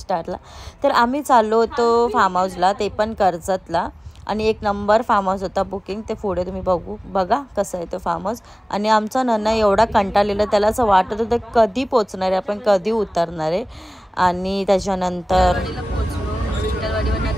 तर आम्ही चाललो होतो फार्म हाऊसला, ते पण कर्जतला, आणि एक नंबर फार्म हाऊस होता बुकिंग। ते पुढे तुम्ही बघा कसं आहे तो फार्म हाऊस। आणि आमचा नन्ना एवढा कंटाळलेला, त्याला असं वाटत होतं कधी पोचणार आहे आपण, कधी उतरणार आहे। आणि त्याच्यानंतर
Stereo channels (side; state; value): both; normal; correlation 0.98